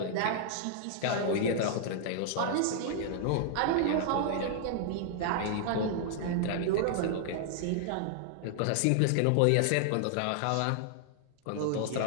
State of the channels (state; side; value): different; both; correlation 0.00